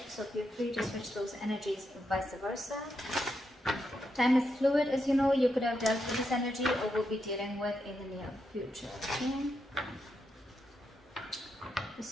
so feel free to switch those energies vice versa. Time is fluid, as you know. You could have dealt with this energy or will be dealing with in the near future. Okay?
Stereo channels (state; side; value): normal; both; correlation 0.83